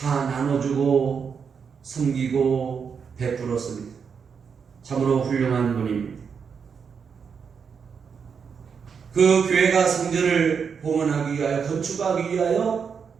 나눠주고 섬기고 베풀었습니다. 참으로 훌륭한 분입니다. 그 교회가 성전을 봉헌하기 위하여, 건축하기 위하여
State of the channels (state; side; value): quieter; left; 6.3 dB